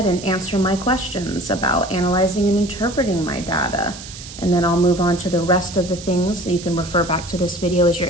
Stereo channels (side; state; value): right; noise; hiss, 14 dB below the sound